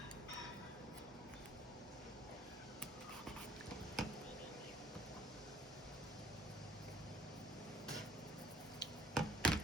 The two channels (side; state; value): both; normal; correlation 0.60